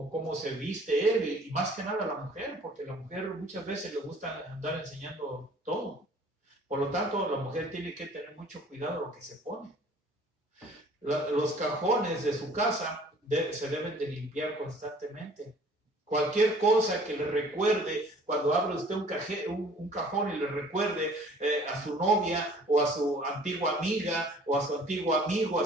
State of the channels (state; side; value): normal; both; correlation 0.52